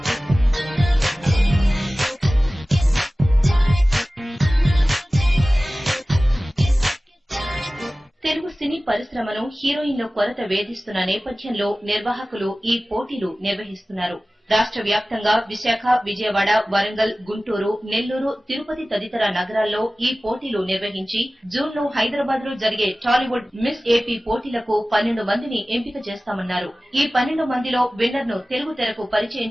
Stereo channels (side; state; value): both; normal; correlation 0.97